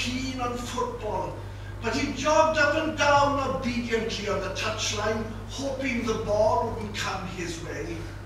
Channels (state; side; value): identical; both; correlation 1.00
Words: on football, but he jogged up and down obediently on the touchline, hoping the ball wouldn't come his way.